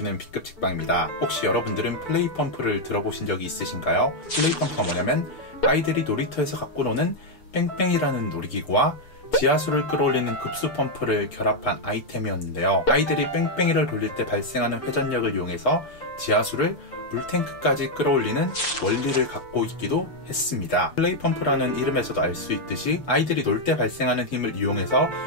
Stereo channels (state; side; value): late; right; 6.8 ms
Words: B급 책방입니다. 혹시 여러분들은 플레이펌프를 들어보신 적이 있으신가요? 플레이펌프가 뭐냐면 아이들이 놀이터에서 갖고 노는 뺑뺑이라는 놀이기구와 지하수를 끌어올리는 급수펌프를 결합한 아이템이었는데요. 아이들이 뺑뺑이를 돌릴 때 발생하는 회전력을 이용해서 지하수를 물탱크까지 끌어올리는 원리를 갖고 있기도 했습니다. 플레이펌프라는 이름에서도 알 수 있듯이 아이들이 놀 때 발생하는 힘을 이용해서